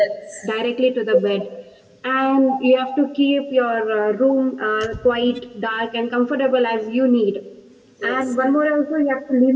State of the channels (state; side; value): identical; both; correlation 1.00